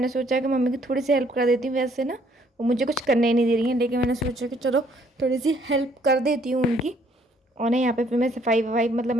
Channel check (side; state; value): both; normal; correlation 0.65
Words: सोचा कि मम्मी की थोड़ी सी हेल्प कर देती हूँ। वैसे ना वो मुझे कुछ करने ही नहीं दे रही है, लेकिन मैंने सोचा कि चलो थोड़ी सी हेल्प कर देती हूँ उनकी। और ना यहाँ पे फिर मैं सफाई वफाई, मतलब